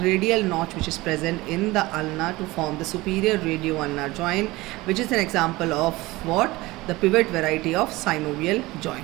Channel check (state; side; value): quieter; left; 20.2 dB